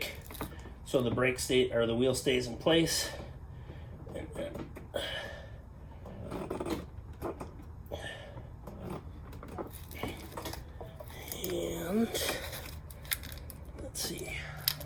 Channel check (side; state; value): both; identical; correlation 1.00